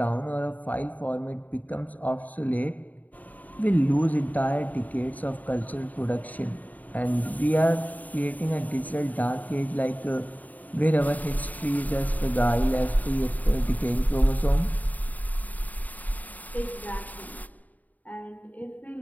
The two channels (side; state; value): right; late; 0.077 ms